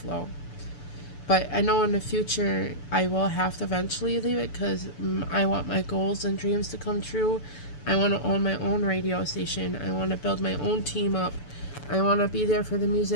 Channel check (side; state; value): right; late; 6.9 ms